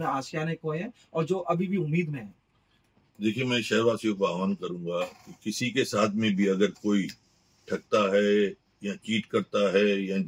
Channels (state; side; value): identical; both; correlation 1.00